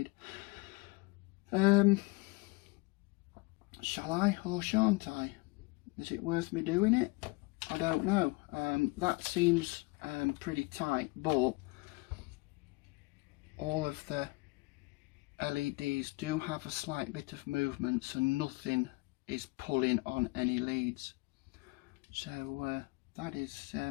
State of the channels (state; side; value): quieter; right; 25.6 dB